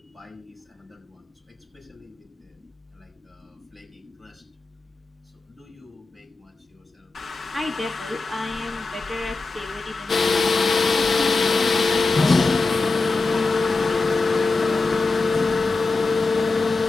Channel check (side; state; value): right; quieter; 3.7 dB